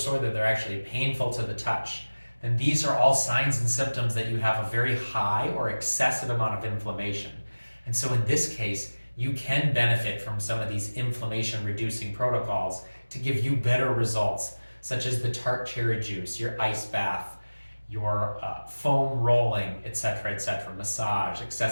that they're actually painful to the touch, then these are all signs and symptoms that you have a very high or excessive amount of inflammation. And so in this case, you can benefit from some of these inflammation reducing protocols to give you better results, such as the tart cherry juice, your ice bath, your foam rolling, etc., massage,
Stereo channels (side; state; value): both; inverted; correlation -1.00